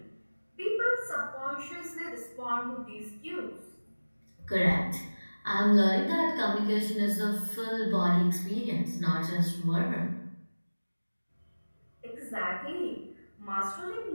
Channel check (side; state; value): both; inverted; correlation -1.00